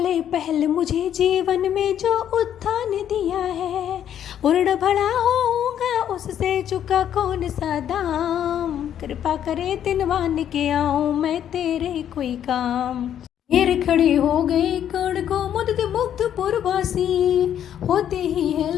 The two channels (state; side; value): quieter; right; 10.0 dB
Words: पहल मुझे जीवन में जो उत्थान दिया है। उर्ण भला होऊंगा उससे चुका कौन सा दाम, कृपा करे दिनवान के आऊं मैं तेरे कोई काम। घेर खड़े हो गए कर्ण को मुग्ध मुग्ध पुरवासी, होते ही है